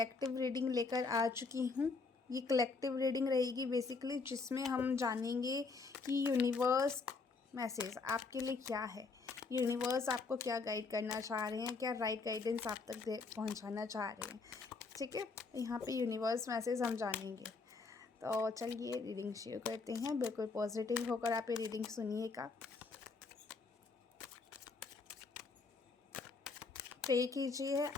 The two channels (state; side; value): quieter; right; 4.2 dB